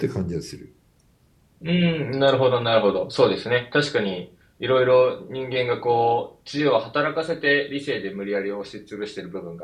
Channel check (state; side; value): identical; both; correlation 1.00